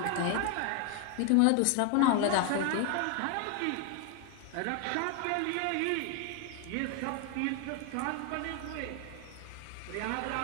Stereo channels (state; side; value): different; both; correlation 0.01